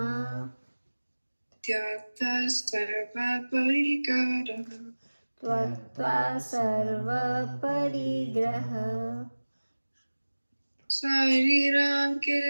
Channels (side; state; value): both; inverted; correlation -1.00